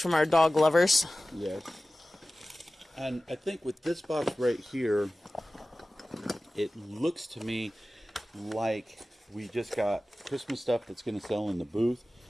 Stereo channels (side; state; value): both; normal; correlation 0.96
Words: our dog lovers. Yes. And I think with this box right here, it looks to me like we just got Christmas stuff that's going to sell in the booth,